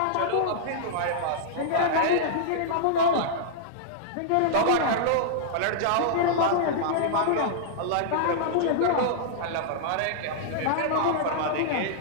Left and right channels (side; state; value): both; different; correlation -0.02